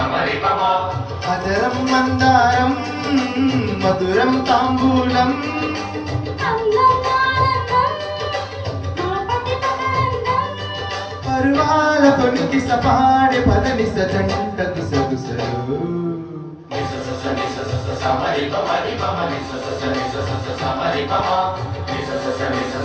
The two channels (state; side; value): identical; both; correlation 1.00